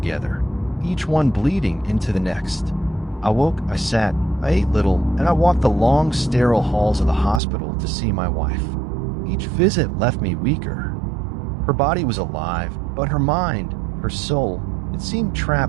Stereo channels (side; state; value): left; drops out; at 7.4 s